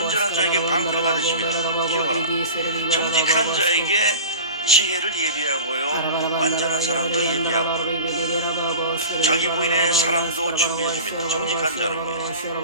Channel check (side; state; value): both; inverted; correlation -0.35